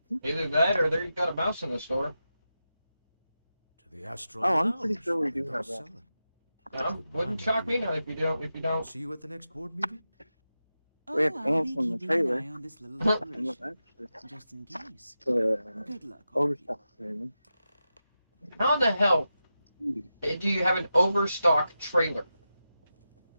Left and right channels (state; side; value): inverted; both; correlation -0.90